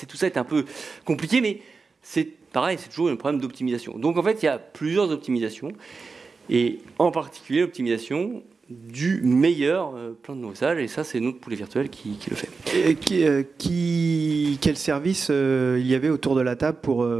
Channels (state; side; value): quieter; left; 4.5 dB